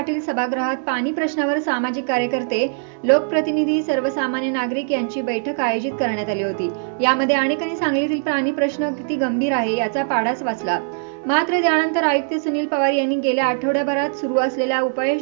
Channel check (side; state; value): left; silent; 64 dB below the other